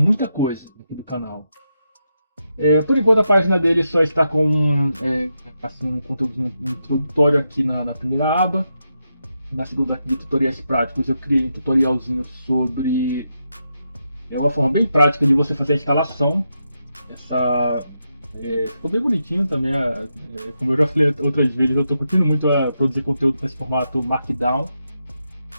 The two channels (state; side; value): inverted; both; correlation -0.85